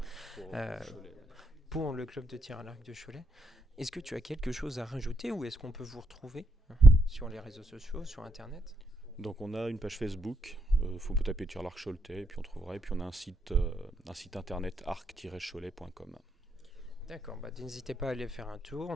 pour le club de tir à l'arc de Cholet. Est-ce que tu as quelque chose à rajouter ou est-ce qu'on peut vous retrouver sur les réseaux sociaux, sur Internet ? Donc on a une page Facebook, faut taper tir à l'arc Choletais et puis on trouvera. Et puis on a un site internet arc-cholet.com. D'accord, n'hésitez pas à aller faire un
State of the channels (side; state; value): both; normal; correlation 0.77